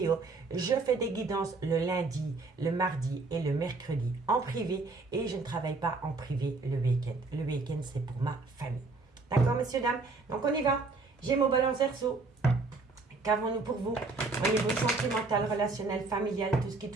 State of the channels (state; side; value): quieter; left; 3.7 dB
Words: Je fais des guidances le lundi, le mardi et le mercredi en privé et je ne travaille pas en privé le week-end. Le week-end, c'est pour ma famille. D'accord, messieurs, dames? Donc, on y va. Gémeaux, Balance, Verseau. Qu'avons-nous pour vous au niveau sentimental, relationnel, familial, tout ce qui